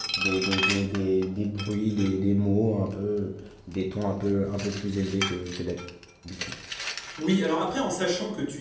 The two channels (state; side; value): identical; both; correlation 1.00